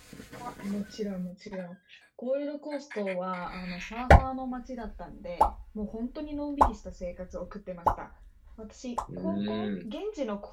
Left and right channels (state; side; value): identical; both; correlation 1.00